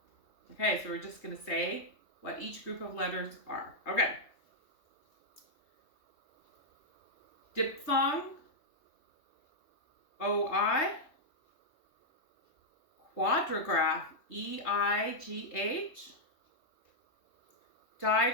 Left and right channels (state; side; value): late; right; 3.2 ms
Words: Okay, so we're just going to say what each group of letters are. Okay. Diphthong, O-I. Quadrigraph, E-I-G-H.